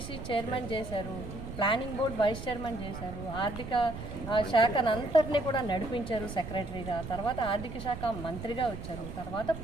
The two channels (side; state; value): right; noise; rumble, 9 dB below the sound